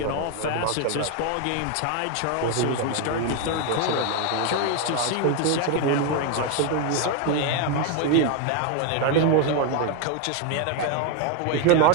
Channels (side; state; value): both; different; correlation 0.01